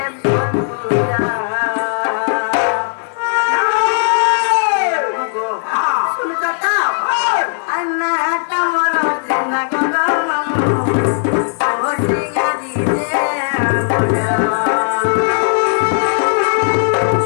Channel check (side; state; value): right; silent; digital silence